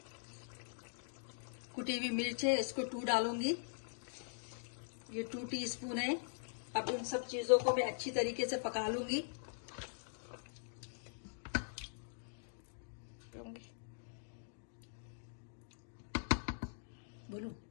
कुटी हुई मिर्च है, इसको 2 डालूंगी। ये 2 टीस्पून है। अब इन सब चीजों को मैं अच्छी तरीके से पका लूंगी। बोलूं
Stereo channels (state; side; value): silent; right; digital silence